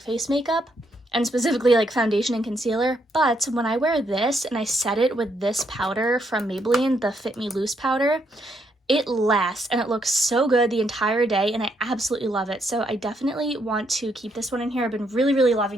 makeup, and specifically foundation and concealer. But when I wear this and I set it with this powder from Maybelline, the Fit Me Loose powder, it lasts and it looks so good the entire day, and I absolutely love it. So I definitely want to keep this one in here. I've been really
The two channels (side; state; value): both; normal; correlation 0.75